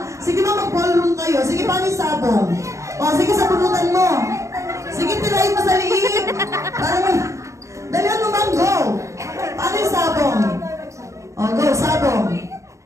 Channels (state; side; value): late; left; 0.15 ms